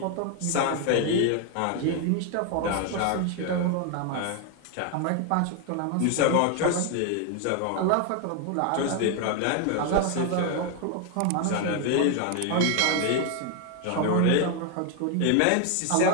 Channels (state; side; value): different; both; correlation 0.01